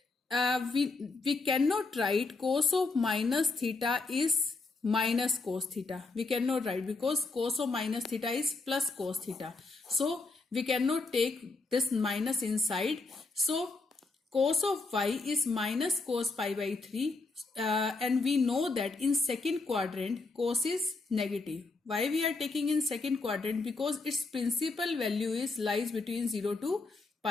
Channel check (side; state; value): right; quieter; 3.7 dB